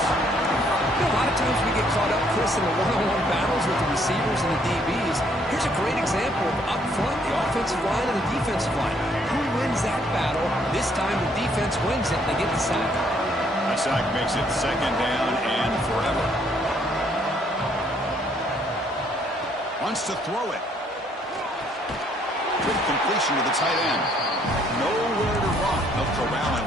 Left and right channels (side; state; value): both; normal; correlation 0.67